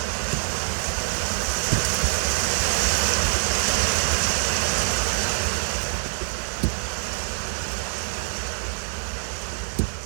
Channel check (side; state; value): left; silent; digital silence